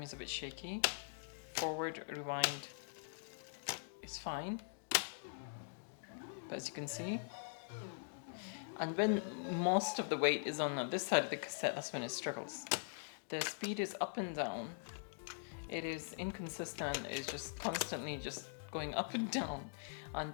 a bit shaky. Forward rewind is fine, but as you can see, and when most of the weight is on this side of the cassette, that's when it struggles. The speed is up and down. It is inconsistent. It's just constantly just going up and down,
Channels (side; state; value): right; silent; digital silence